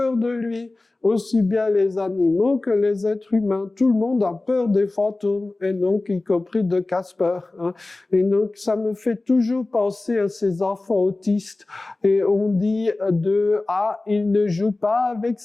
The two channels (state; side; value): quieter; right; 3.1 dB